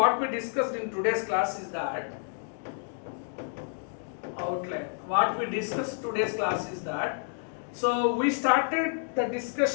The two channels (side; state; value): right; silent; 58 dB below the other